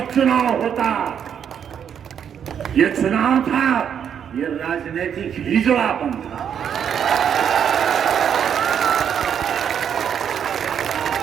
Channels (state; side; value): quieter; left; 8.3 dB